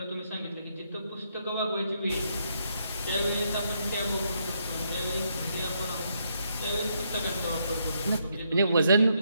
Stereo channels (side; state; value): both; inverted; correlation -0.76